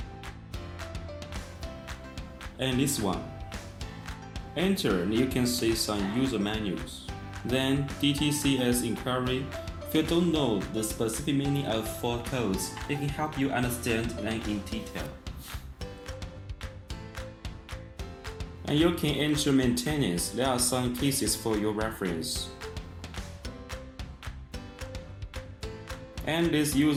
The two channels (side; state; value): both; identical; correlation 1.00